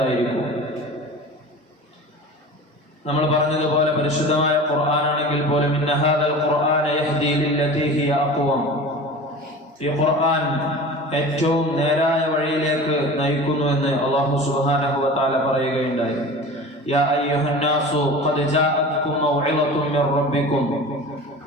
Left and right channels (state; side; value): normal; both; correlation 0.36